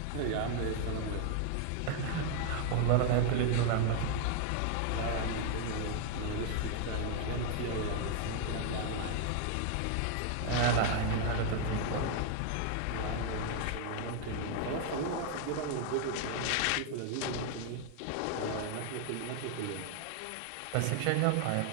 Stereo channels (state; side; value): different; both; correlation 0.00